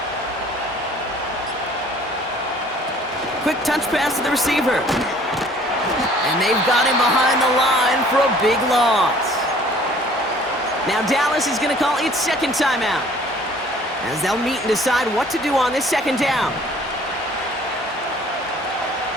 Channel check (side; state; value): both; normal; correlation 0.54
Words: Quick touch pass to the receiver. And they've got him behind the line for a big loss. Now Dallas is going to call its second timeout, as they'll meet and decide what to do on this second down.